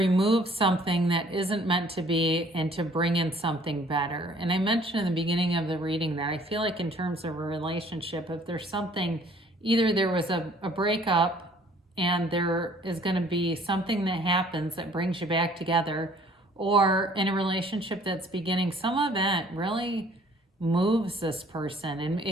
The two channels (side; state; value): both; normal; correlation 0.57